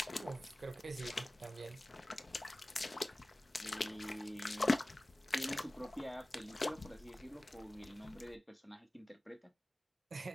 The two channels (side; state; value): both; normal; correlation 0.97